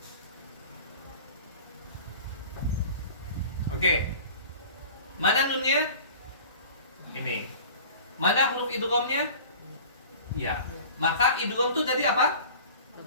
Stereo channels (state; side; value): inverted; both; correlation -0.41